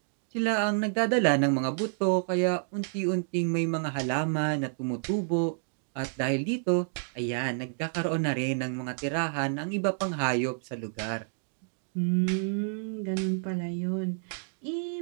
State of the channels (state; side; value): silent; left; digital silence